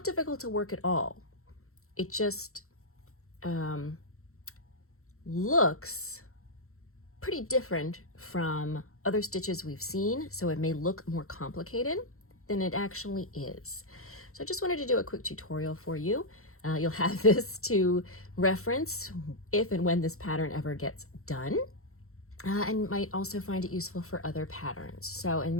difficult to work at all. It just looks pretty different from other stitches we've seen, so it may look more complicated than it actually is. So I just wanted to do a quick tutorial for you. You'll have this to reference if and when this pattern ever gets done, and might also find it useful for other patterns. So in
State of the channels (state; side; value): late; right; 0.63 ms